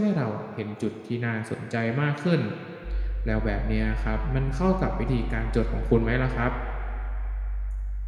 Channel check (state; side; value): identical; both; correlation 1.00